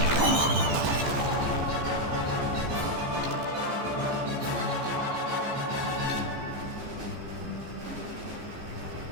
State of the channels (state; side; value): late; left; 14 ms